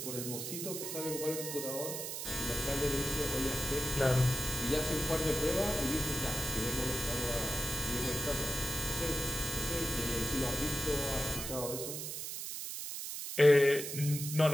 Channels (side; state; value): right; noise; hiss, 5 dB below the sound